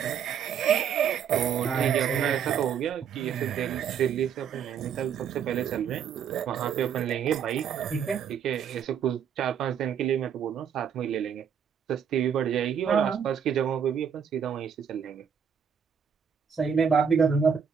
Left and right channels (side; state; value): left; quieter; 7.7 dB